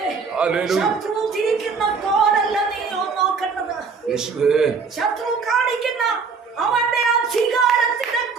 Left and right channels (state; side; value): quieter; left; 5.1 dB